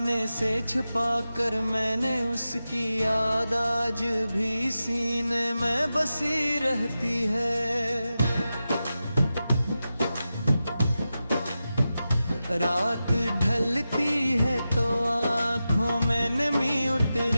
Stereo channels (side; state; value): both; inverted; correlation -0.92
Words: से छुपा कर मैंने, उसकी याद आज भी सीने में बसी रहती है। रात ढलती है तो आँखों में नमी